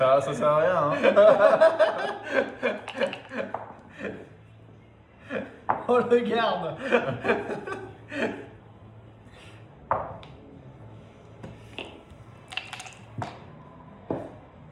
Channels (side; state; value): both; identical; correlation 1.00